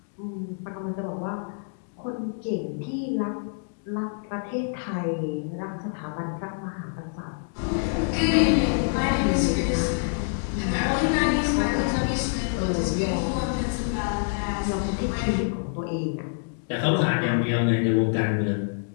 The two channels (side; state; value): right; silent; digital silence